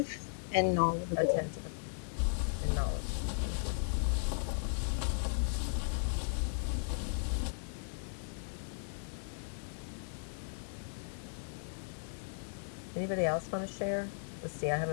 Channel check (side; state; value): right; silent; digital silence